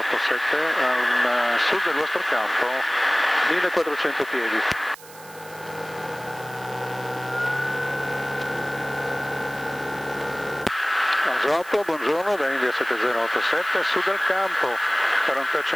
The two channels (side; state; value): right; noise; hiss, 20 dB below the sound